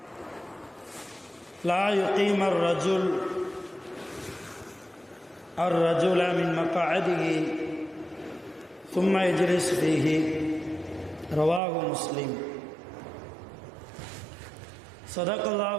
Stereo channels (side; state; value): left; drops out; at 11.6 s